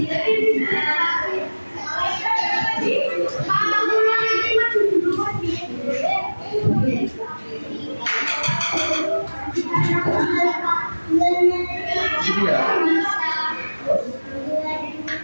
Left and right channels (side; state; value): both; inverted; correlation -1.00